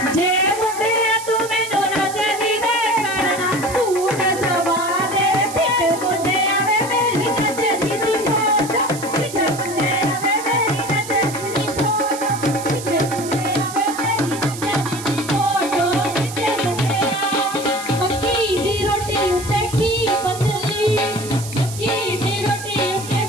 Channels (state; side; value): noise; right; hiss, 11 dB below the sound